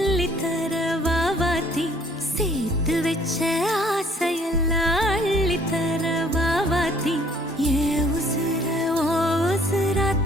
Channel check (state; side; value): normal; both; correlation 0.59